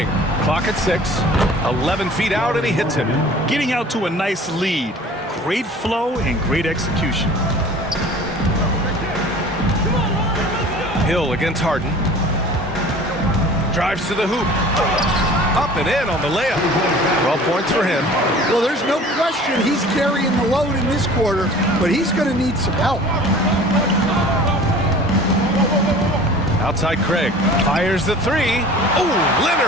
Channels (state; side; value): normal; both; correlation 0.44